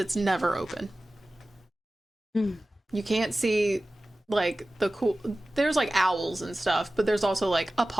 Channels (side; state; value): both; normal; correlation 0.96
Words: never open. You can't see like the cool... There's like owls and stuff, but there's also like a